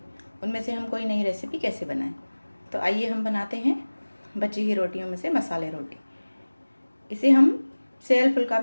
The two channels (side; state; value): both; inverted; correlation -1.00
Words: उनमें से हम कोई नई रेसिपी कैसे बनाएं। तो आइए हम बनाते हैं बची हुई रोटियों में से मसाले रोटी। इसे हम सेयल फुल्का